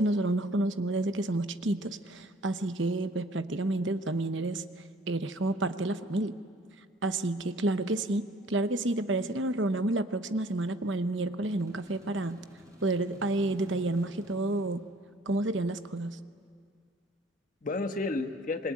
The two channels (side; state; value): both; normal; correlation 0.55